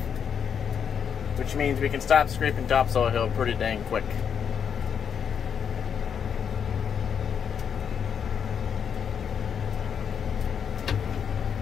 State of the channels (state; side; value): quieter; right; 7.5 dB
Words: which means we can stop scraping topsoil hill pretty dang quick.